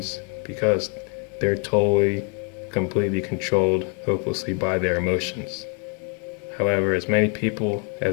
because they're totally, completely controlled hopelessly by their emotions. However, as many people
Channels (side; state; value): right; quieter; 38.6 dB